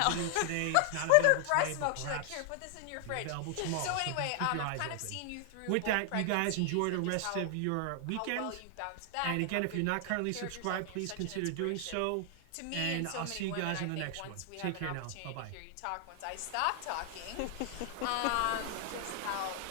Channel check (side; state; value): both; different; correlation 0.00